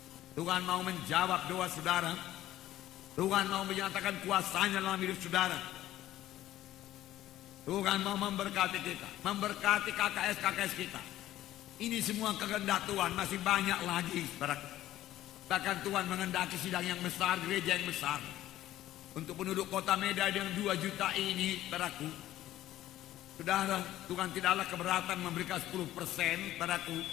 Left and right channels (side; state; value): right; quieter; 14.0 dB